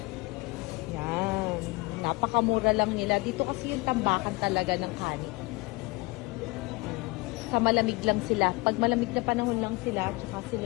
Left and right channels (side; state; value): right; quieter; 24.9 dB